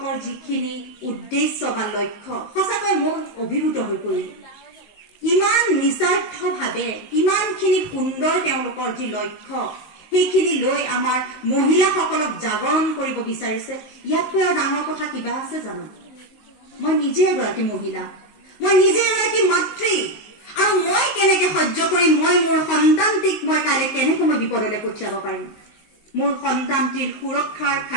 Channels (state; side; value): late; right; 19 ms